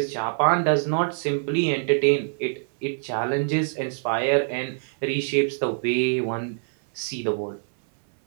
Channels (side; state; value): left; silent; 60 dB below the other